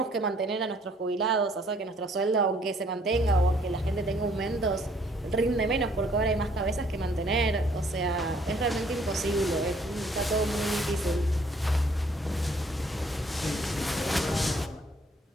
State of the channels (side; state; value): both; normal; correlation 0.63